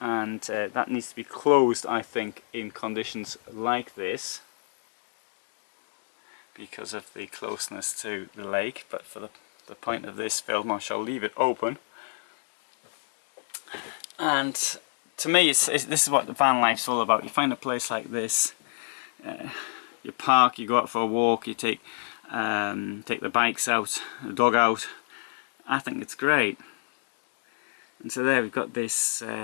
that needs to be closed, I think, in conditions like this because of the closeness to the lake, but for the point of this film I shall leave it open. And to me this is what the van life's all about. You find a place like this, you park, you go out for a walk, you take the bikes out, the dog out. I think it's great. And so there we've got this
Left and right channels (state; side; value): silent; right; digital silence